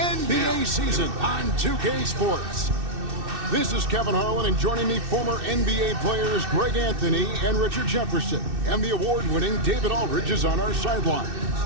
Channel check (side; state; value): left; late; 2.6 ms